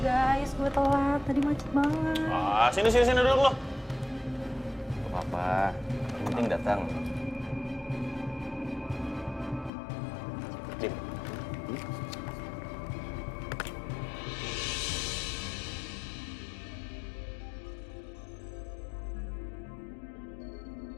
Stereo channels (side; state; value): right; drops out; at 9.7 s